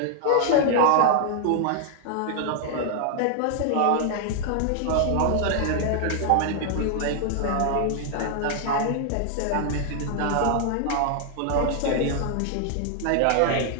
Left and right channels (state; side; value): different; both; correlation 0.00